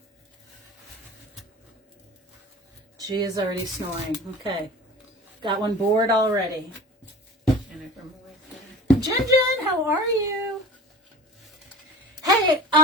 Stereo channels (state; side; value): normal; both; correlation 0.39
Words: She is already snoring. Okay. Got one bored already. Jen, how are you? Hey,